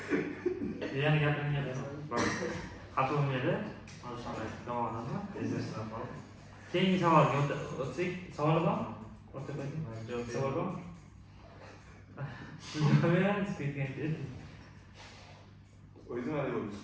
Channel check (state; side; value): identical; both; correlation 1.00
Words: Yana gapiringga xafa bo'lmaydi. Keyingi savolga o'tsak, savol bor? Savol bor? O'zim hali